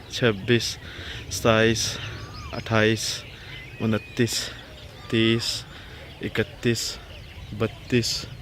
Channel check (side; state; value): both; identical; correlation 1.00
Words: 26 27 28 29 30 31 32